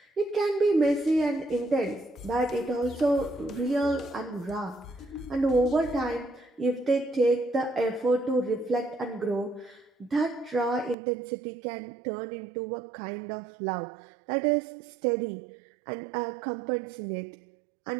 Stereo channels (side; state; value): left; drops out; at 11.0 s